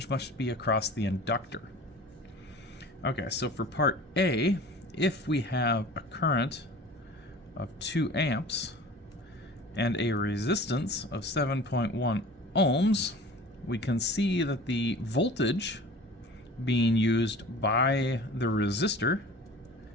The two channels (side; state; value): both; normal; correlation 0.41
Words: must be across the inductor. Okay, so for part A, if we have a current of 2 amps and a resistance of 7.1 ohms, we can see that the voltage being used by the resistor